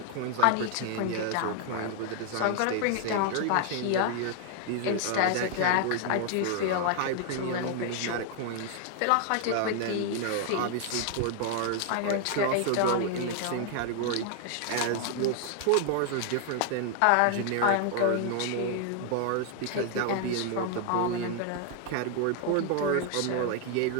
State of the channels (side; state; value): both; different; correlation 0.00